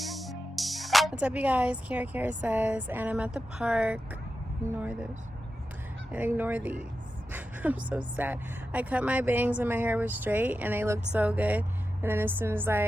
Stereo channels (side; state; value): both; normal; correlation 0.91